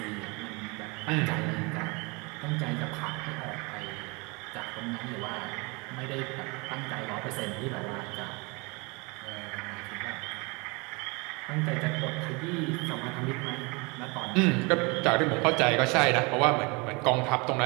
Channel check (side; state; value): left; quieter; 28.4 dB